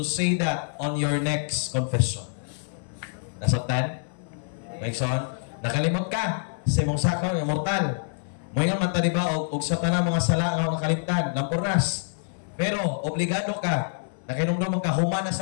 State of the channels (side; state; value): right; silent; digital silence